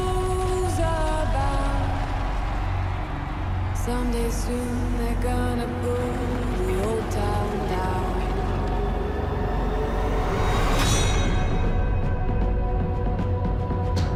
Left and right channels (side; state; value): both; identical; correlation 1.00